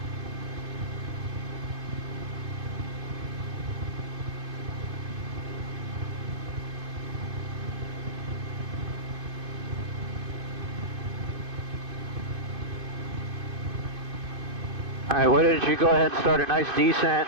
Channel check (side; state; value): left; late; 2.5 ms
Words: Alright, why don't you go ahead and start a nice descent